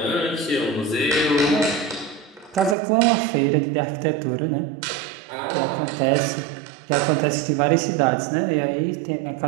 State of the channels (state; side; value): drops out; left; at 2.8 s